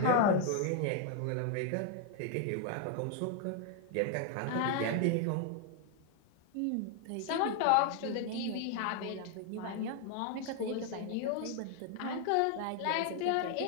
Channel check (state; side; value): different; both; correlation 0.00